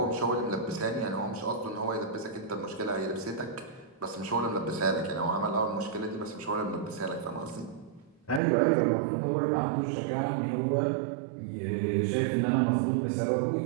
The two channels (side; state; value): left; drops out; at 8.4 s